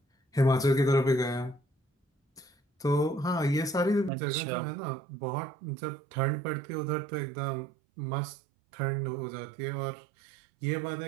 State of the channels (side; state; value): left; drops out; at 4.1 s